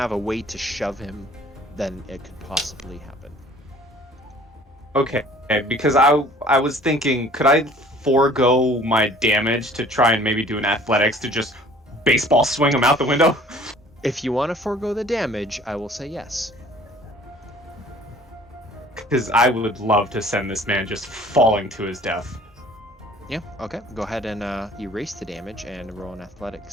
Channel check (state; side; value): normal; both; correlation 0.52